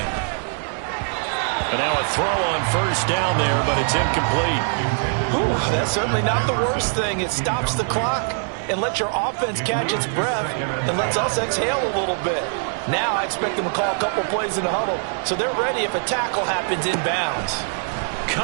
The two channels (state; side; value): silent; left; 56 dB below the other